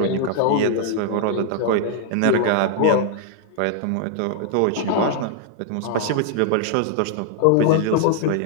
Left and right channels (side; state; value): both; different; correlation 0.00